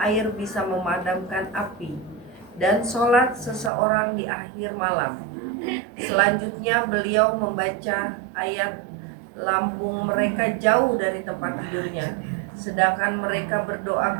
air bisa memadamkan api, dan sholat seseorang di akhir malam. Selanjutnya beliau membaca ayat, lambung mereka jauh dari tempat tidurnya, sedangkan mereka berdoa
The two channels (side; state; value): left; drops out; at 3.7 s